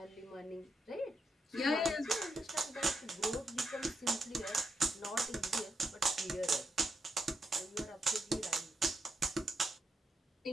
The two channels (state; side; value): normal; both; correlation 0.83